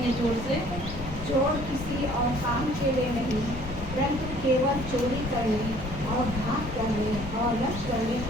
जोर से। चोर किसी और काम के लिए नहीं, परंतु केवल चोरी करने और घात करने और नष्ट करने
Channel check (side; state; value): left; noise; rumble, 10 dB below the sound